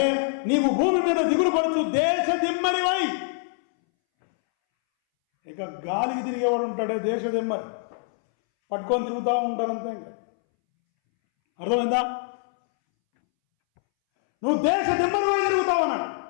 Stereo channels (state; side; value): silent; right; 62 dB below the other